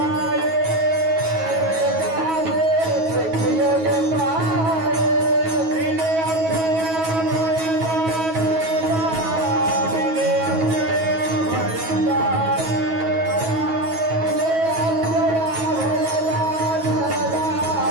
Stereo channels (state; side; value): late; left; 9.3 ms